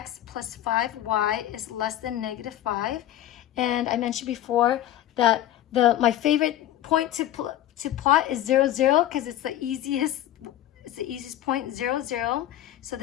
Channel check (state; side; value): quieter; right; 13.0 dB